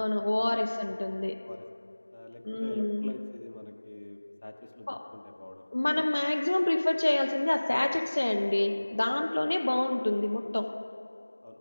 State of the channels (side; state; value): both; inverted; correlation -1.00